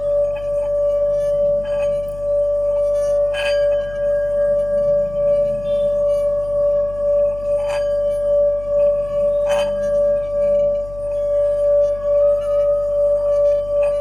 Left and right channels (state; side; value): noise; left; hum, 16 dB below the sound